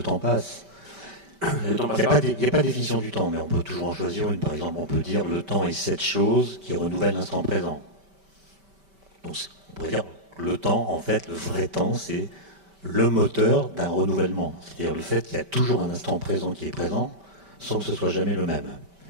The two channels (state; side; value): late; left; 5.1 ms